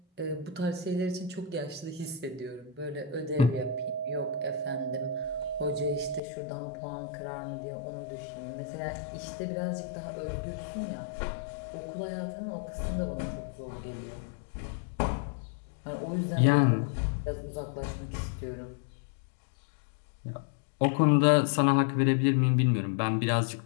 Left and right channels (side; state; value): right; drops out; at 6.2 s